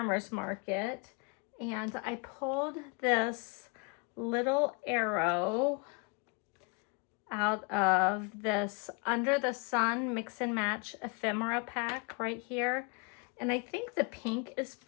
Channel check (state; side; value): quieter; right; 33.8 dB